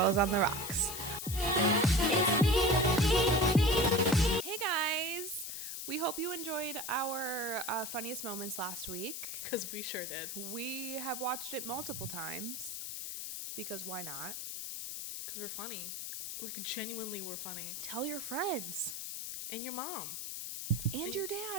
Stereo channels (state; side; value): noise; left; hiss, 6 dB below the sound